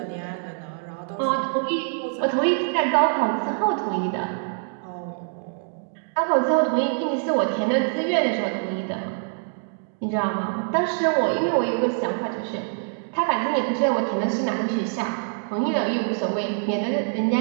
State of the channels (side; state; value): left; silent; digital silence